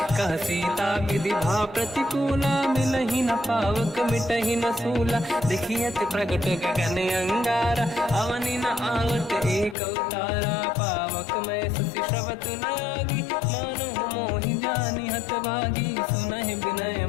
कह सीता विधि भा प्रतिकूला, मिलहि न पावक मिटहि न सूला, देखियत प्रगट गगन अंगारा, अवनि न आवत एक अवतारा, पावक मैं ससि श्रवत न आगी, मानो मोहि जानि हतभागी, सुनहि विनय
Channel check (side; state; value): right; drops out; at 9.8 s